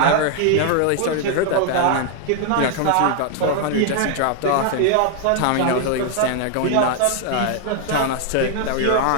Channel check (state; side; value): different; both; correlation 0.00